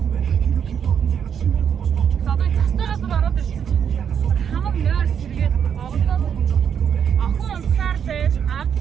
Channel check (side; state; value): left; quieter; 8.0 dB